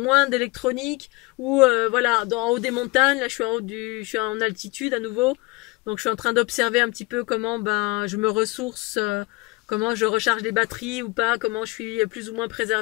d'électronique, ou voilà, en haut des montagnes. Là je suis en altitude à nouveau, donc je suis en train d'observer un petit peu comment ben je me ressource, comment je recharge les batteries ou pas, comment je suis plus ou moins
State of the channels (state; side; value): quieter; right; 23.6 dB